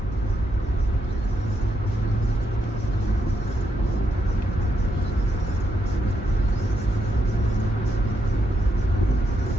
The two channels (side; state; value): both; normal; correlation 0.79